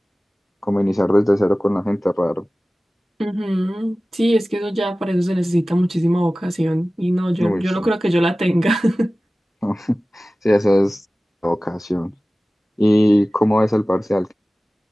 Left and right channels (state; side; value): normal; both; correlation 0.97